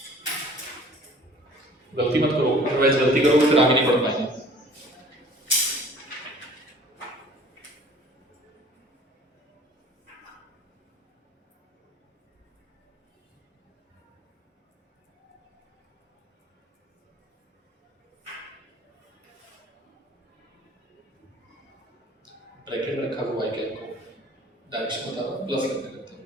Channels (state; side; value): normal; both; correlation 0.50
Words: गलती मत करो, अदरवाइज गलती करोगे फिर आगे नहीं बढ़ पाएंगे। ब्रैकेट में रखा हुआ है क्या को डायरेक्शन बता रहा, प्लस करते करते